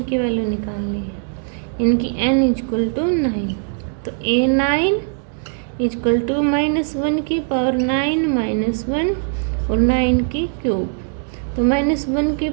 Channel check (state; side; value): silent; left; digital silence